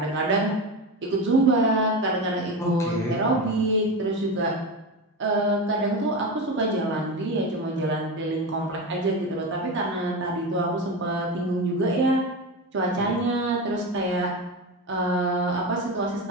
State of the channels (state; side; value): normal; both; correlation 0.21